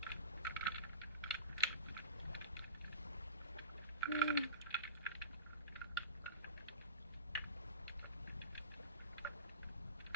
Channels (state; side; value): inverted; both; correlation -0.35